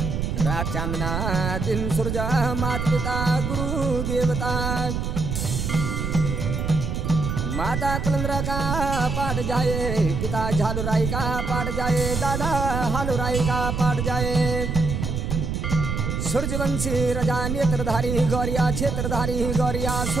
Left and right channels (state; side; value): noise; right; rumble, 2 dB below the sound